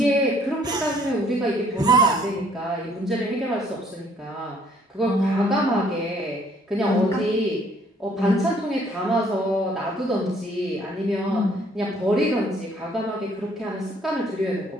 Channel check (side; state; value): both; normal; correlation 0.62